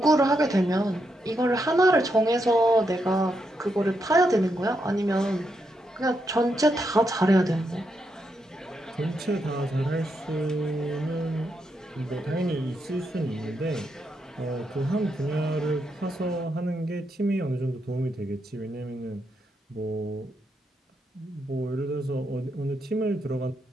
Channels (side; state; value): both; normal; correlation 0.81